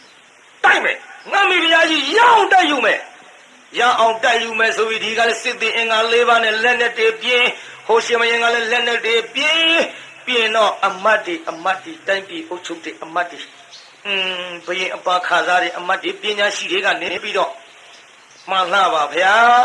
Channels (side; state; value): both; identical; correlation 1.00